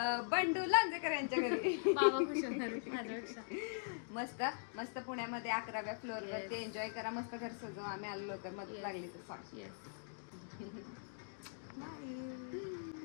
बंडू लांजेकर यांच्या घरी. बाबा खुश होणार माझ्यापेक्षा. मस्त मस्त पुण्यामध्ये 11व्या फ्लोअर वरती एन्जॉय करा. मस्त घर सजव. आम्ही आलो लवकर, मदत लागली तर सांग. येस.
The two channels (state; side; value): silent; right; digital silence